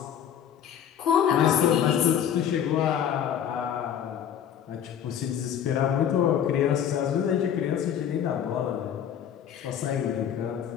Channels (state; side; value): quieter; right; 9.2 dB